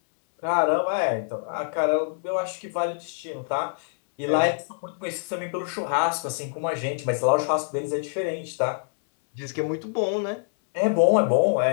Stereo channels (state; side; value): silent; right; 61 dB below the other